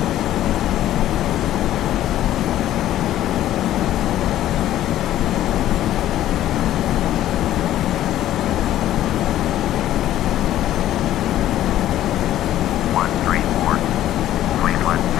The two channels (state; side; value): quieter; right; 13.0 dB